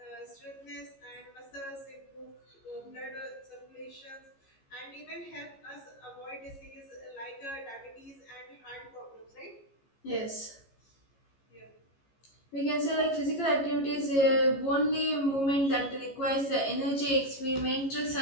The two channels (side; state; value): right; late; 15 ms